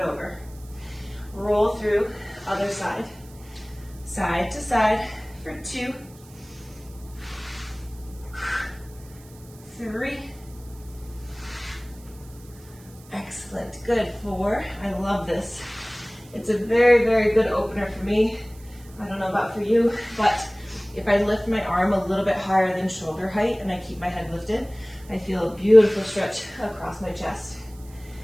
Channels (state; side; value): noise; right; hiss, 24 dB below the sound